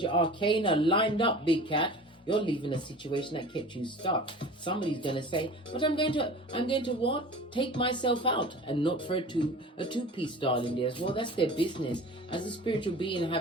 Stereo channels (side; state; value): both; normal; correlation 0.39